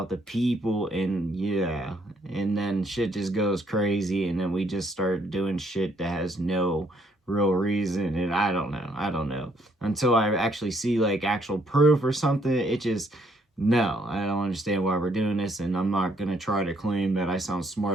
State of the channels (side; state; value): both; normal; correlation 0.68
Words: the people, and yeah, and then shit just goes crazy, and then we just start doing shit that has no real reason, and I don't know. Until I actually see, like, actual proof or something, it just, no, I don't understand why we're doing this, and I'm not gonna try to claim that I sound